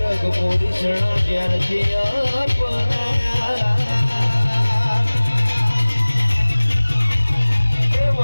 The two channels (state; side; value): inverted; both; correlation -1.00